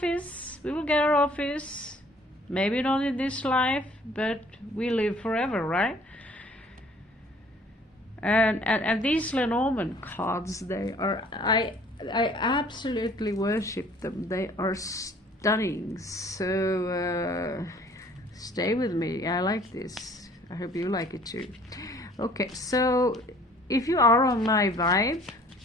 we will get our office. Maybe not in this life, but we live forever, right? And these Lenormand cards, they are, I absolutely worship them. They are stunning. So stay with me. I like this. I hope you like it too. Okay, so if you are on my vibe,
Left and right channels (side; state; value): both; normal; correlation 0.55